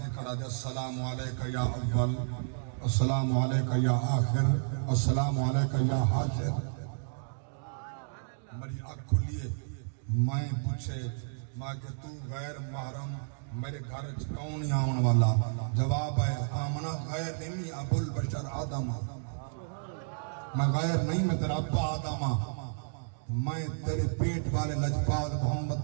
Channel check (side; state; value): left; silent; digital silence